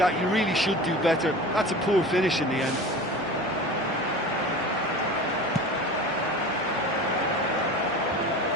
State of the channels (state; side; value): normal; both; correlation 0.35